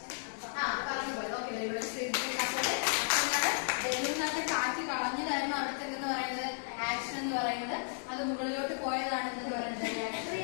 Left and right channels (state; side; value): silent; right; digital silence